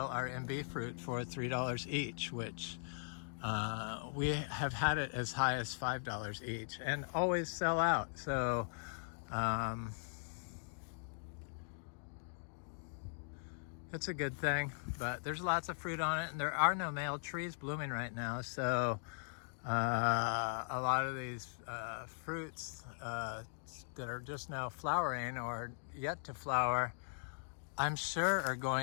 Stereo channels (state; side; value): silent; right; digital silence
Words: our Imbe fruit for $3 each, which we have had it as high as $5 each and always sell out. So it's a good thing, but there's lots of fruit on it, and there are no male trees blooming right now. So a lot of these fruits that are just now flowering or yet to flower I'm sure are